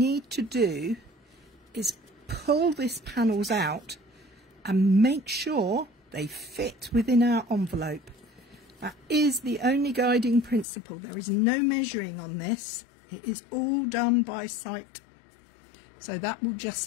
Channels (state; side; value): drops out; right; at 10.7 s